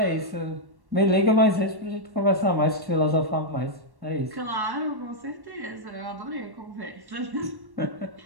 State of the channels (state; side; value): late; left; 1.1 ms